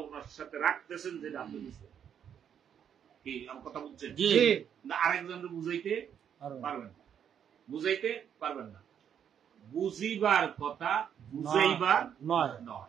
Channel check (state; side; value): quieter; left; 8.6 dB